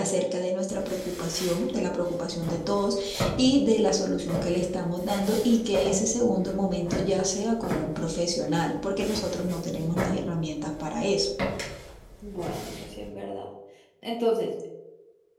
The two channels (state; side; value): identical; both; correlation 1.00